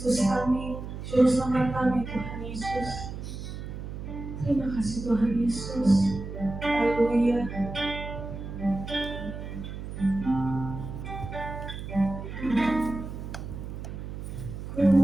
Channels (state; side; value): noise; right; hum, 8 dB below the sound